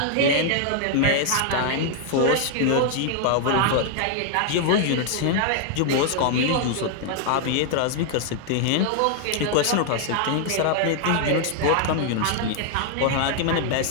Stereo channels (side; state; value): both; different; correlation 0.00